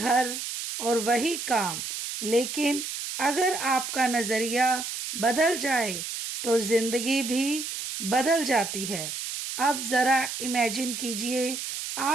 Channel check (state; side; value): noise; right; hiss, 5 dB below the sound